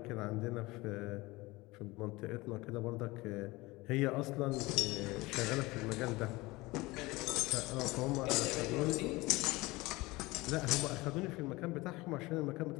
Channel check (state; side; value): quieter; right; 21.6 dB